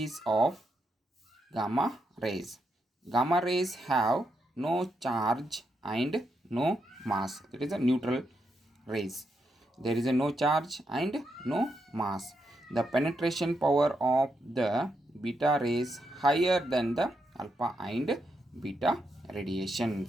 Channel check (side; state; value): both; normal; correlation 0.82